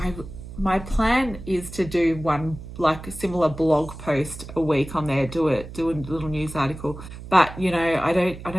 My plan is to do one like a similar blog post a week on there, do a little news article. But you know, I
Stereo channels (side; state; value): right; noise; hum, 13 dB below the sound